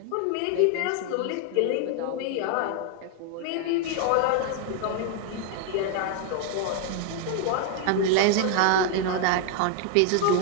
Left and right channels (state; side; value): different; both; correlation 0.00